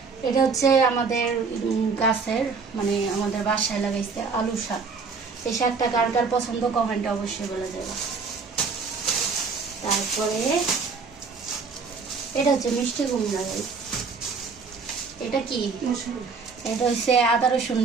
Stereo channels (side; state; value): left; quieter; 4.8 dB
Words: এটা হচ্ছে আমাদের গাছের, মানে আমাদের বাসায় লাগাইছে আলু শাক। এই শাকটা কার কার পছন্দ কমেন্টে অবশ্যই বলে যাবে। তারপরে এটা হচ্ছে মিষ্টি কুমড়া। এটা কি? এটা হচ্ছে আদা রসুন